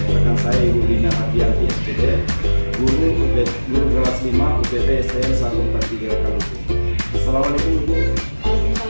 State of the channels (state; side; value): inverted; both; correlation -1.00